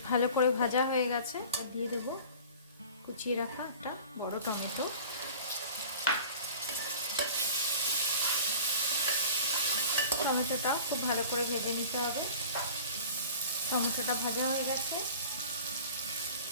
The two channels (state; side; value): inverted; both; correlation -0.41